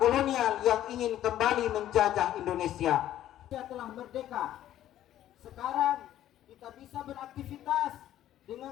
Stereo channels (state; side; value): quieter; right; 12.4 dB